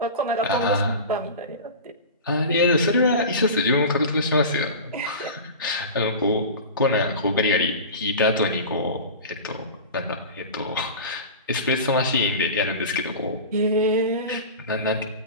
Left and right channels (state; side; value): inverted; both; correlation -0.32